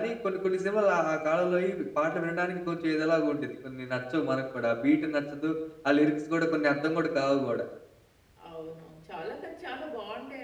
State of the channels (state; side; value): identical; both; correlation 1.00